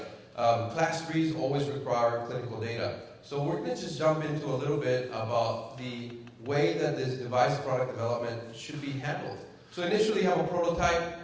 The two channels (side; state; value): both; identical; correlation 1.00